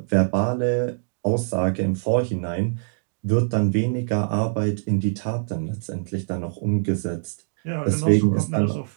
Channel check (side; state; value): left; silent; digital silence